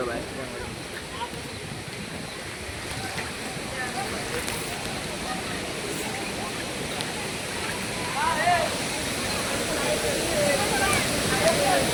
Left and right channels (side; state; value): both; identical; correlation 1.00